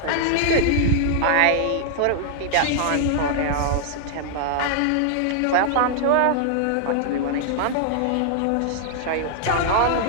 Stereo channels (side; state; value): both; different; correlation -0.01